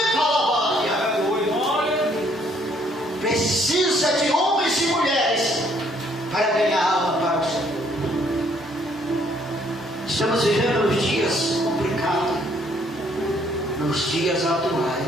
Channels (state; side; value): normal; both; correlation 0.66